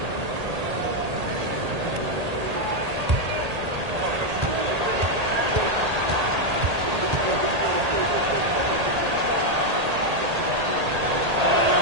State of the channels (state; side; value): late; left; 1.8 ms